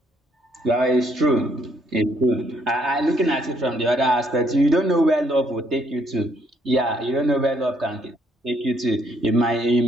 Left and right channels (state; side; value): normal; both; correlation 0.69